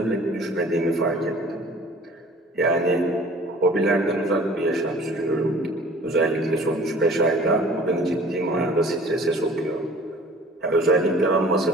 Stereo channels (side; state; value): both; normal; correlation 0.48